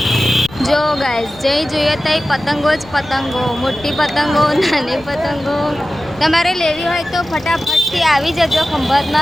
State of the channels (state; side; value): noise; left; rumble, 23 dB below the sound